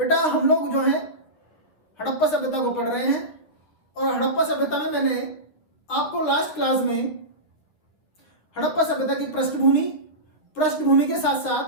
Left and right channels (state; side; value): late; right; 9.6 ms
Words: हम लोग जो है हड़प्पा सभ्यता को पढ़ रहे हैं और हड़प्पा सभ्यता में मैंने आपको लास्ट क्लास में हड़प्पा सभ्यता की पृष्ठभूमि के साथ